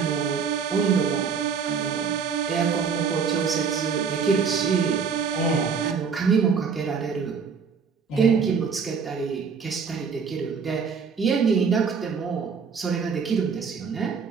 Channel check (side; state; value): left; quieter; 5.9 dB